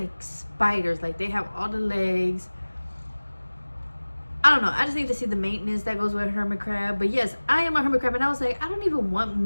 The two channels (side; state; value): both; inverted; correlation -1.00